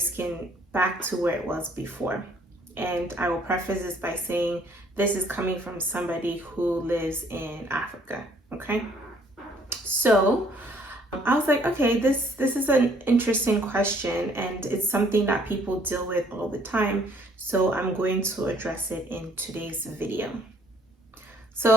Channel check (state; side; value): normal; both; correlation 0.62